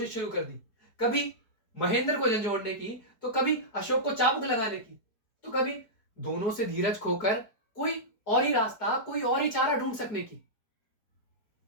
शुरू कर दी। कभी महेंद्र को झंझोड़ने की, तो कभी अशोक को चाबुक लगाने की, तो कभी दोनों से धीरज खोकर कोई और ही रास्ता, कोई और ही चारा ढूंढ सकने की।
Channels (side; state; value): right; late; 4.7 ms